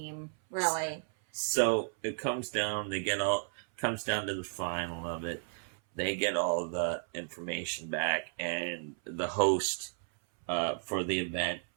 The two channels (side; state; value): left; silent; 56 dB below the other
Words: really. So it comes down to the final of it. They get all the information back, and the host for the event.